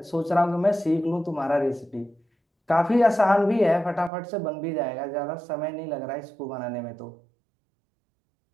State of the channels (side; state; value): left; drops out; at 4.1 s